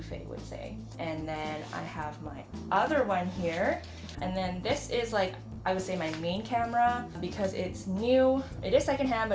would say. And then I have my other one here, and then this is like, I would say my main camera because it's new. It is secondhand,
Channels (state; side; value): identical; both; correlation 1.00